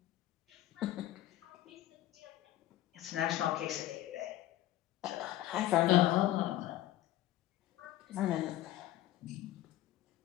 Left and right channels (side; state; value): right; quieter; 14.3 dB